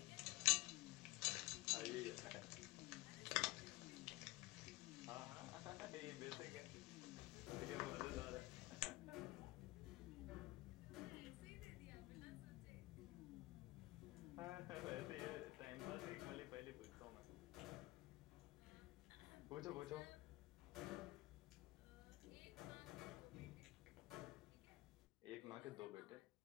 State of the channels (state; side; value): quieter; right; 20.3 dB